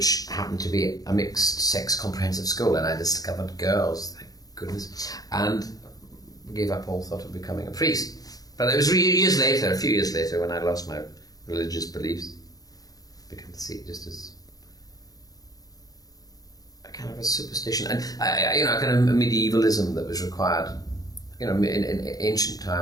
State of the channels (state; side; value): late; right; 0.18 ms